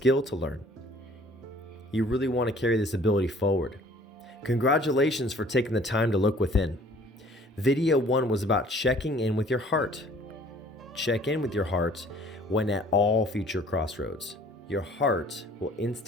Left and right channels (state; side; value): normal; both; correlation 0.54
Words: to learn. You really want to carry this ability forward. Congratulations for taking the time to look within. Video 1 was about checking in with your heart. Check in with your heart when at all future crossroads. Your heart will